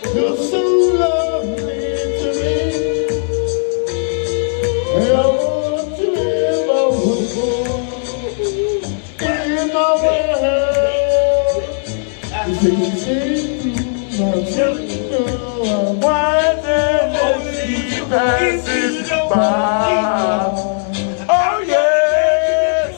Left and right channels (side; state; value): right; silent; digital silence